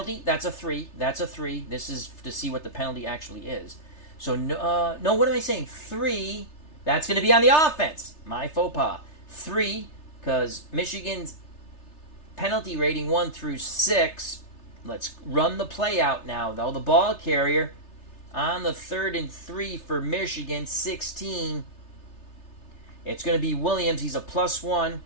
That's a 3. That's a 3. This is to see what the penalty actually is. So, no, what am I saying? 3. That's going to be on the offense. My faux pas. 3, because Michigan's penalty rating 1 through 6. Let's run the play out now, though. The ball carrier on the 3rd and 3 for Michigan, 16. It's going to be Williams. He's a +1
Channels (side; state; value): right; late; 3.3 ms